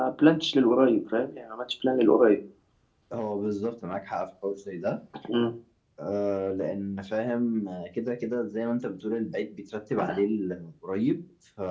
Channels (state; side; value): identical; both; correlation 1.00